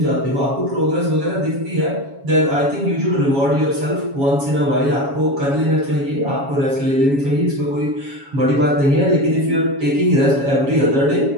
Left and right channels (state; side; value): late; left; 7.2 ms